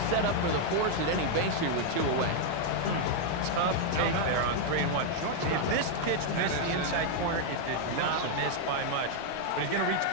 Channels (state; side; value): different; both; correlation 0.00